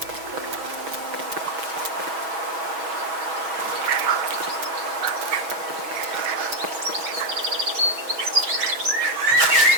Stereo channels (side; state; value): left; late; 6.2 ms